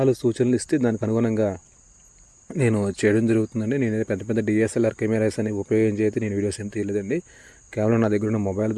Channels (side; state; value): both; identical; correlation 1.00